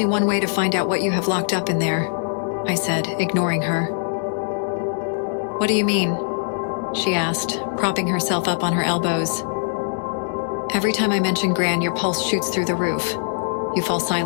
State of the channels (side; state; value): right; silent; digital silence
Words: one way to find out what you have locked up in there," I said, ignoring her. "What do you mean?" she asked, propping herself up on her elbows. "Every time I mention Gran, your pulse shoots through the roof. You fall